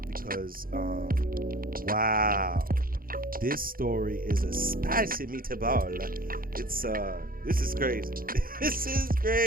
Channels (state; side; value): late; left; 0.42 ms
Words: because, wow. This story is a spicy meatball. This is crazy. This is